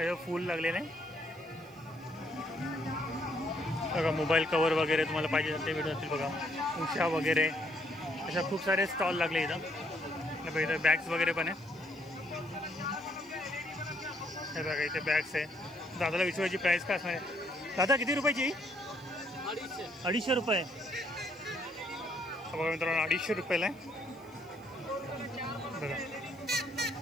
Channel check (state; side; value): noise; right; hiss, 29 dB below the sound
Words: फूल लागलेलं आहे. बघा मोबाईल कवर वगैरे तुम्हाला पाहिजे ते भेटून जातील. बघा उषा वगैरे अशा खूप सारे स्टॉल लागले इथं. बघा इथं बॅग्स वगैरे पण आहे. हे बघा इथे बॅग्स आहे. दादाला विचारायची प्राईस काय असणार आहे? दादा किती रुपयाची? 250 रुपये. बघा मित्रांनो 250 रुपयाला आहे. बघा